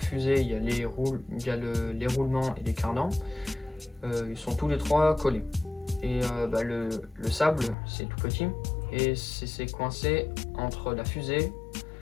il y a les roulements et les cardans. Ils sont tous les 3 collés. Et le sable, c'est tout petit et c'est coincé entre la fusée,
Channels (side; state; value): right; drops out; at 7.8 s